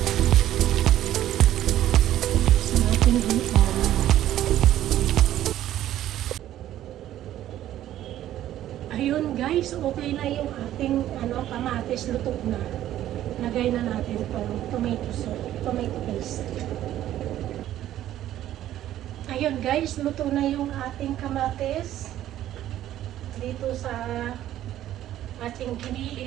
Sa ating ihaw. Ayun guys, okay na yung ating kamatis, luto na. Lagay na natin itong tomato sauce, tomato paste. Ayun guys, luto na yung ating kamatis. Dito sa ating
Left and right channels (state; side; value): quieter; left; 12.7 dB